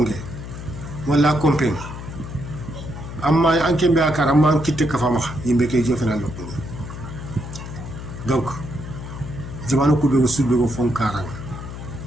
wala compagnie amma anke mbe akara amma kitte ka fama yimbe kay jofena lo ko donc jamanu ko be sube ko fon karanga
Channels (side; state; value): left; noise; hum, 10 dB below the sound